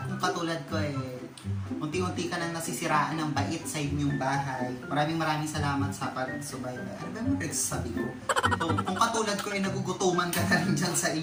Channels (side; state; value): both; identical; correlation 1.00